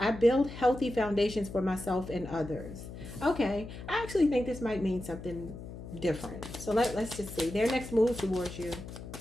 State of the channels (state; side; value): noise; left; hum, 12 dB below the sound